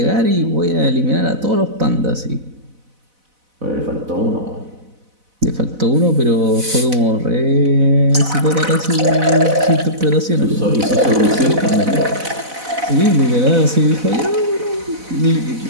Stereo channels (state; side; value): late; left; 4.0 ms